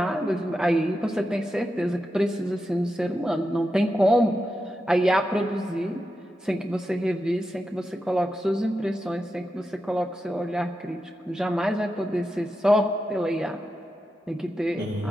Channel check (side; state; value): both; normal; correlation 0.89